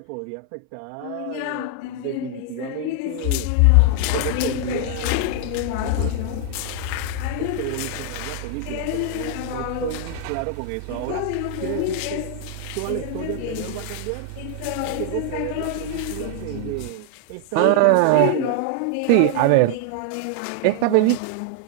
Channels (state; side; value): different; both; correlation 0.00